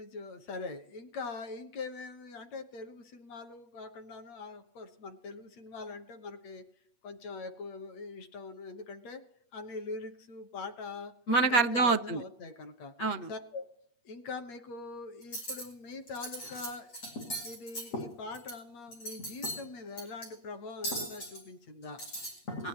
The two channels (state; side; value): late; right; 8.5 ms